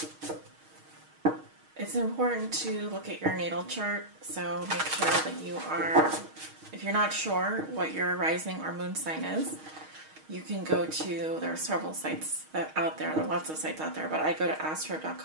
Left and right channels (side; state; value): left; late; 6.4 ms